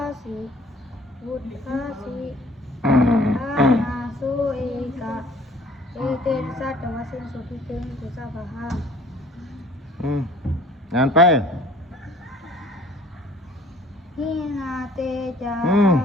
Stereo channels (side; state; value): both; normal; correlation 0.53